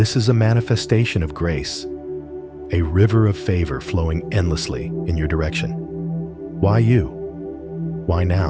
is a manifestation of grace, a river of favor flowing endlessly in your direction. Why you? Why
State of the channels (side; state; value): both; identical; correlation 1.00